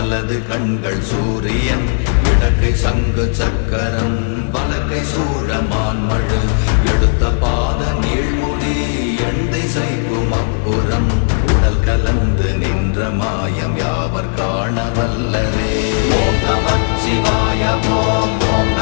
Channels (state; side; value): silent; right; digital silence